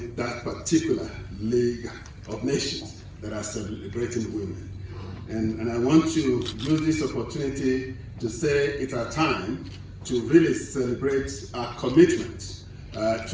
that particular League of Nations that are celebrating women. And I want to use this opportunity to say it's our time to really celebrate our commitment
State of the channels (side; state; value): both; identical; correlation 1.00